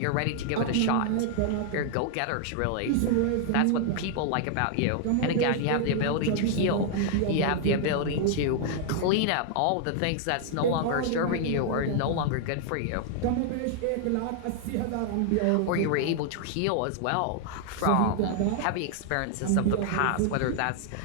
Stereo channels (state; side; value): different; both; correlation 0.00